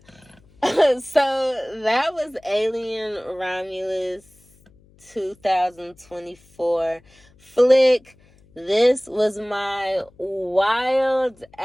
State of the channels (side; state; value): left; noise; hum, 30 dB below the sound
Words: So, that was Alien Romulus 2024 flick. This was my wild